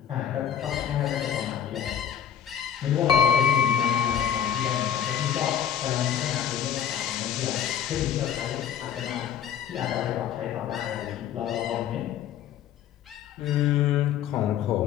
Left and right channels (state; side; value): quieter; right; 9.2 dB